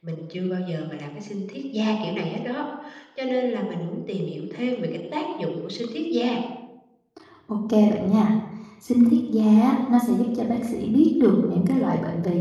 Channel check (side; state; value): both; identical; correlation 1.00